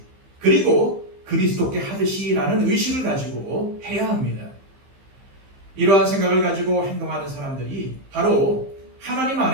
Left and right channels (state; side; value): late; left; 15 ms